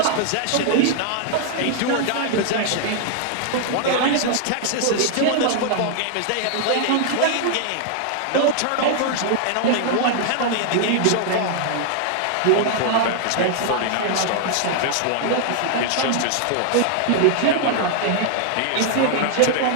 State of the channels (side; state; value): both; different; correlation -0.01